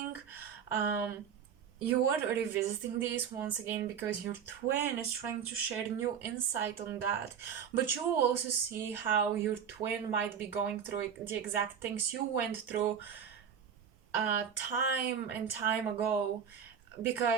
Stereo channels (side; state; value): left; quieter; 7.8 dB